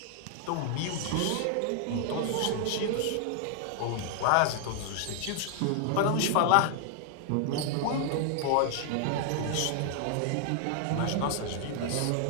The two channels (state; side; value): different; both; correlation 0.00